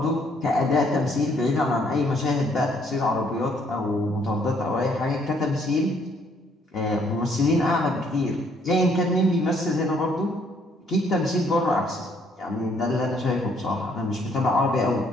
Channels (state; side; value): normal; both; correlation 0.66